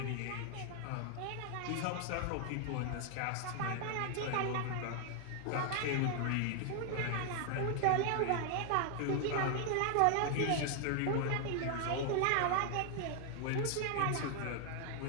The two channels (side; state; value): both; different; correlation 0.00